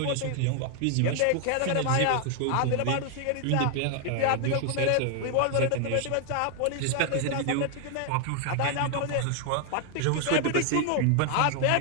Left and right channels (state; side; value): different; both; correlation 0.00